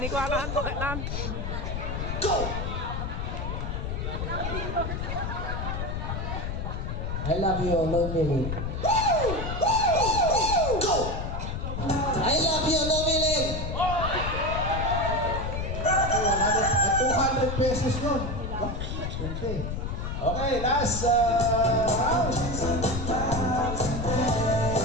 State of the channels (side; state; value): left; noise; rumble, 3 dB below the sound